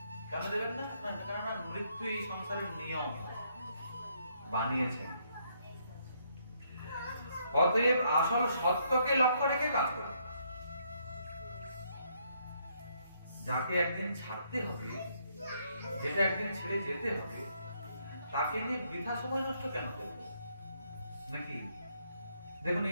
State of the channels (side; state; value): both; inverted; correlation -0.72